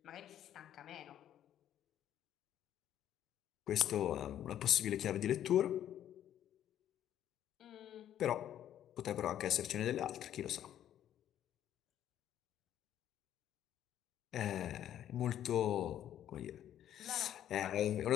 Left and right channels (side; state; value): right; quieter; 11.0 dB